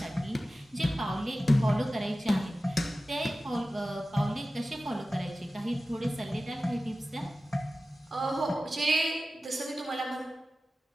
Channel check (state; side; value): normal; both; correlation 0.95